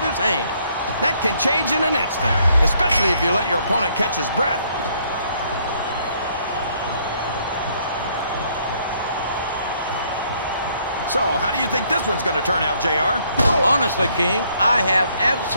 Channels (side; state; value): both; inverted; correlation -0.67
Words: his hand. That can change in an instant, especially if you let your opponent catch his breath. So, how do you think this one's going to turn out, JR? Honestly, King, I have